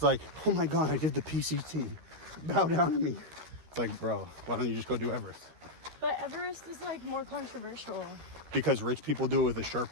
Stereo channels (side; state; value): left; late; 13 ms